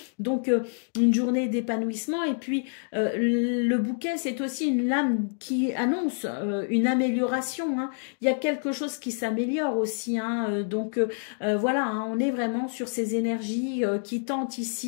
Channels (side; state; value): right; silent; digital silence